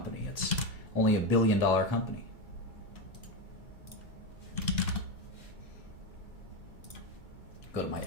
It's only $1 billion company. Go to my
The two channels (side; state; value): right; late; 2.3 ms